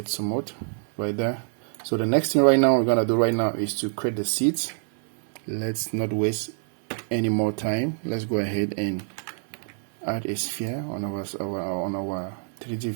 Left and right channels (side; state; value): left; silent; 58 dB below the other